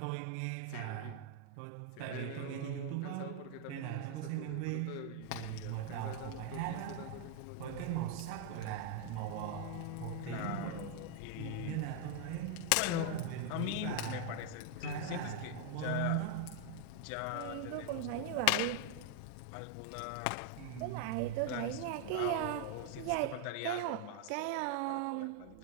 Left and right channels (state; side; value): different; both; correlation 0.00